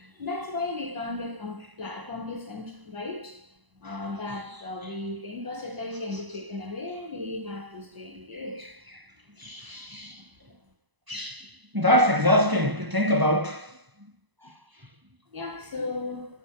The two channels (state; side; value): late; left; 1.0 ms